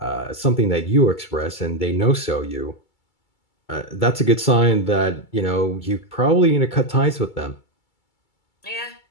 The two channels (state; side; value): late; right; 2.3 ms